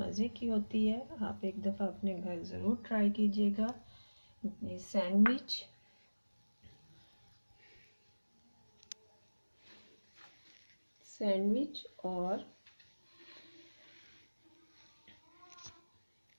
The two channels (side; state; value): both; inverted; correlation -1.00